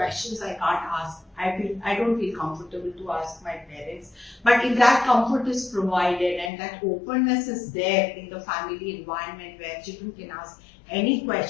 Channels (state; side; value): drops out; right; at 6.5 s